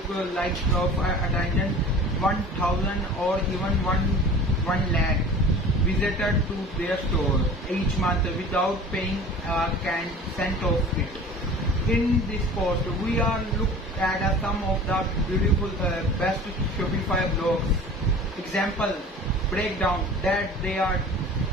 like of attention 1,000 or even 1 lakh visited to their store each month without paying a cent of it. In this post, we are look at some of the beautiful best Shopify blogs. Example, breakdown that they are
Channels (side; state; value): both; normal; correlation 0.41